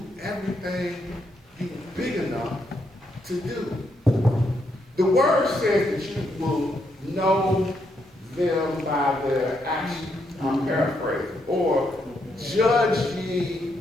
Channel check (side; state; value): both; normal; correlation 0.78